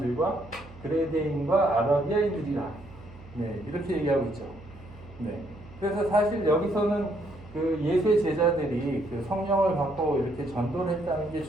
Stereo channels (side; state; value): right; noise; hum, 19 dB below the sound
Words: 그레데인과 아라비아인들이라 이렇게 얘기하고 있죠. 그래서 사실 여기서는 그 예수의 제자들이 그 성령을 받고 이렇게 전도를 했다는 게